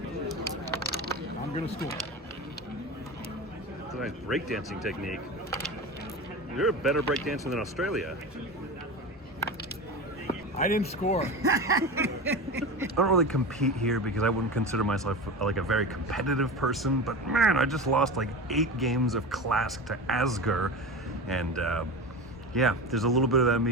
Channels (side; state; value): both; normal; correlation 0.27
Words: I'm gonna score. It's a nice breakdancing technique. You're a better breakdancer than Australia. I didn't score. I don't really compete here because I wouldn't consider myself like a very competitive person, but man, I just lost like 8 games of Klask to Asger, and yeah, there's a little bit of that